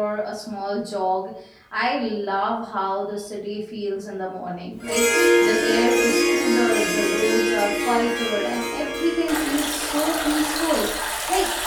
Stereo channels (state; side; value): identical; both; correlation 1.00